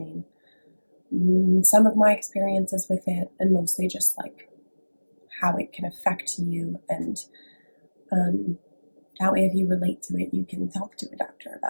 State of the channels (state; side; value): inverted; both; correlation -1.00